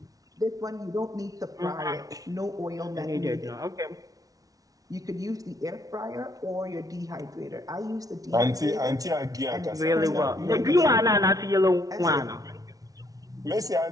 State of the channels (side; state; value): left; late; 0.18 ms